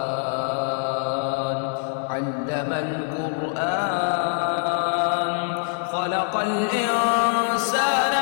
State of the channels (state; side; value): silent; right; 57 dB below the other